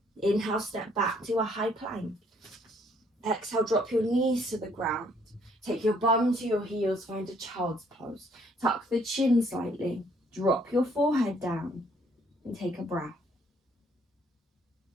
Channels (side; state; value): both; normal; correlation 0.65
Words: Inhale, step back to a high plank. Exhale, drop your knees to the ground. Take your bum to your heels, find a child's pose. Tuck the chin slightly, drop your forehead down, and take a breath.